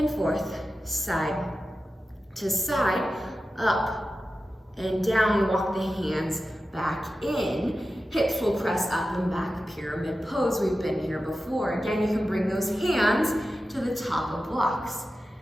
forth, side to side, up and down. Walk the hands back in. Hips will press up and back, pyramid pose. We've been here before. Again, you can bring those hands to the top of blocks.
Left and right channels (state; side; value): normal; both; correlation 0.93